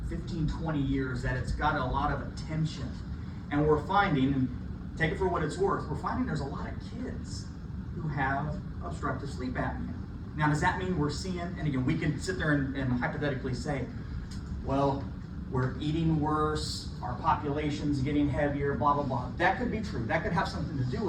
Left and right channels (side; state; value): both; identical; correlation 1.00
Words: 15, 20 years that it's got a lot of attention. And we're finding, and take it for what it's worth, we're finding there's a lot of kids who have obstructive sleep apnea. Now, does that mean we're seeing, and again, we can sit there and hypothetically say, well, we're eating worse, our population's getting heavier, blah, blah, blah. That could be true. That could have something to do